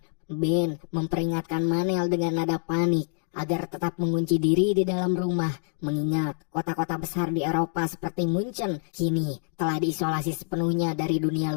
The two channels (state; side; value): silent; right; digital silence